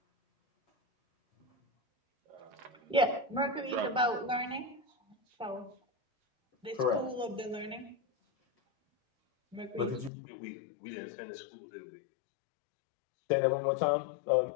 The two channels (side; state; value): right; drops out; at 10.1 s